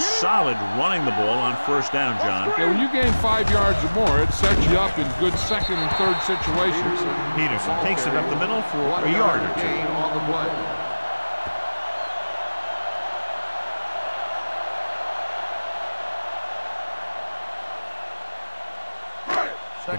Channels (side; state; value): both; inverted; correlation -1.00